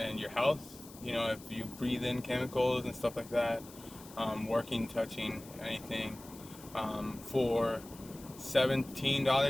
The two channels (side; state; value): left; noise; hiss, 19 dB below the sound